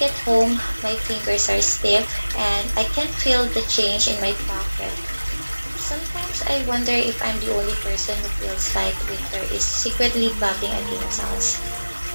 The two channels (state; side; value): inverted; both; correlation -1.00